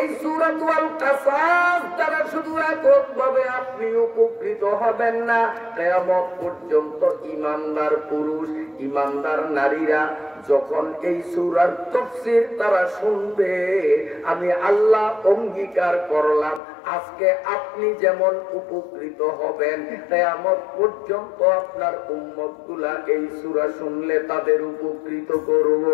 সূরাতুল আল কাসাস দ্বারা শুধু এককভাবে আপনি উপকৃত হবেন না, কিয়ামত পর্যন্ত ঈমানদার পুরুষ ঈমানদার নারীরা যখন এই সূরার তাফসীর তারা শুনবে, আমি আল্লাহ অঙ্গীকার করলাম আজকে আপনি যেমন উপকৃত হবেন, কিয়ামত পর্যন্ত আপনার উম্মতগুলা এই সূরা শুনলে তাদের উপকৃত করব।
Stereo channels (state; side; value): drops out; right; at 16.6 s